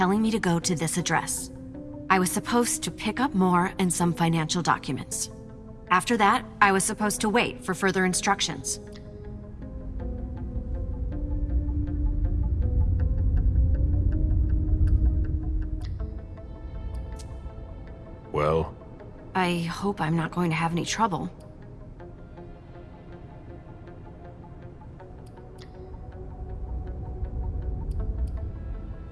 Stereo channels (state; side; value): identical; both; correlation 1.00